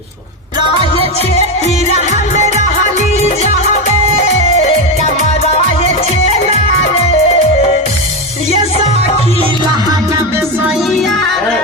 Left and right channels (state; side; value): normal; both; correlation 0.13